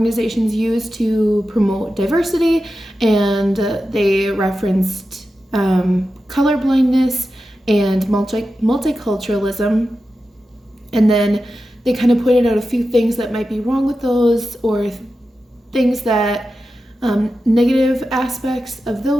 use to promote diversity, and they referenced colorblindness and multiculturalism, and then they kind of pointed out a few things that might be wrong with those, or things that negative aspects of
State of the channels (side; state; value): both; normal; correlation 0.91